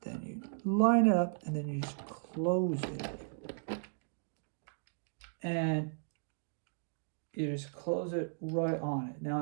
Then you line it up, and then you just close it. And you just close it right on it.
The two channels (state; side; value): silent; left; digital silence